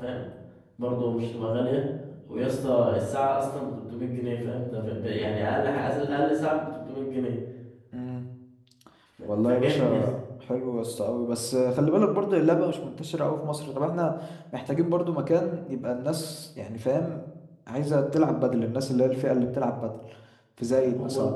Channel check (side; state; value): both; identical; correlation 1.00